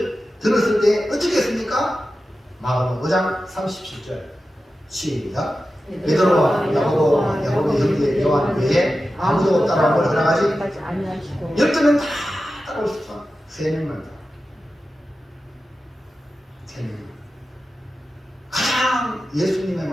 들었을 때 어떻게 했습니까? 마가복음 5장 37절 시작. 베드로와 야고보의 형제 요한 외에 아무도 따라오걸 허락하지 아니하시고 12명 다 따라올 수 있어. 3명만 다. 3명. 가장 예수님의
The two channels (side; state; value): both; normal; correlation 0.93